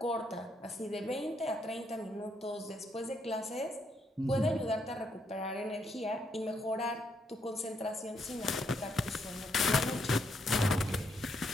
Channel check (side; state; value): both; normal; correlation 0.76